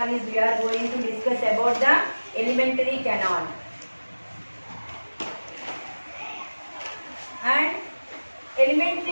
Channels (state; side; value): inverted; both; correlation -1.00